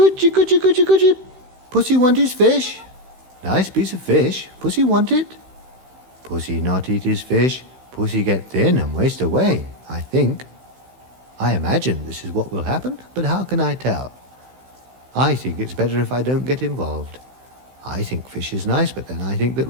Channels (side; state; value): left; late; 16 ms